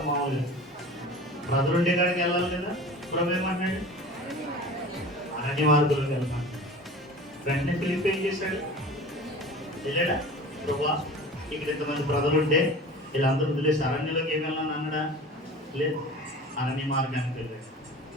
మామూలుగా ప్రజలుండే కాడికి వెళ్ళాలి కదా. ప్రభు ఏమంటున్నాడు? అరణ్య మార్గంలోకి వెళ్తాను. వెంటనే ఫిలిప్ ఏం చేశాడు? వెళ్ళాడా? ప్రభా ఇక్కడ ఇంతమంది ప్రజలుంటే వీళ్ళందరూ వదిలేసి అరణ్యంలోకి ఏమి వెళ్ళాలని అన్నాడా? లేదు, అరణ్య మార్గానికి వెళ్ళాడు.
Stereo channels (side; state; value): both; normal; correlation 0.38